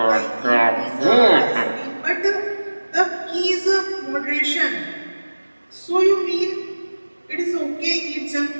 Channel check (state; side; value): inverted; both; correlation -1.00